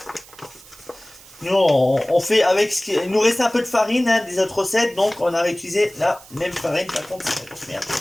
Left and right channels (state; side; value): noise; right; hiss, 21 dB below the sound